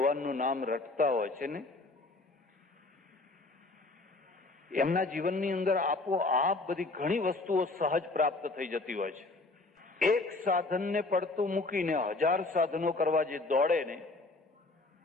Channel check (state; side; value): quieter; right; 3.3 dB